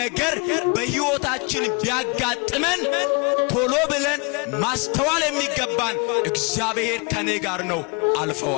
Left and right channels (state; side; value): quieter; right; 31.8 dB